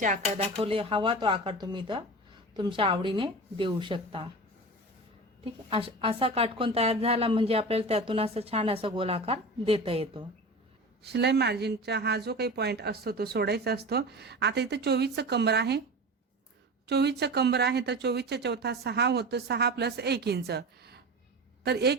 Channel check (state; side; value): normal; both; correlation 0.31